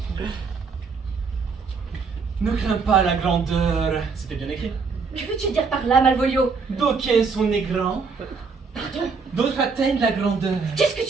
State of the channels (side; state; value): left; quieter; 5.0 dB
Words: Ne crains pas la grandeur. C'était bien écrit. Que veux-tu dire par là, Malvolio? D'aucuns sont nés grands, Pardon? d'autres atteignent la grandeur. Qu'est-ce que